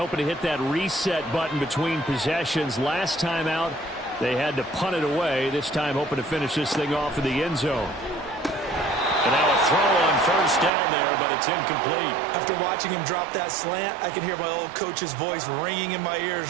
to hit that reset button between possessions. Last time out, they had to punt it away. This time hoping to finish this thing off in the end zone. And now a throw on first down there, but it's incomplete. After watching him drop that slant, I can hear my old coach's voice ringing in my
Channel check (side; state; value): left; drops out; at 10.7 s